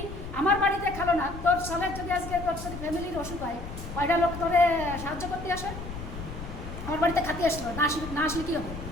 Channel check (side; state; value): left; noise; rumble, 10 dB below the sound